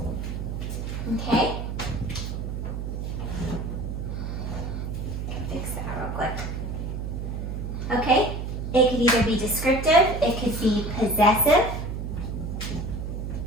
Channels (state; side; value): noise; right; hum, 4 dB below the sound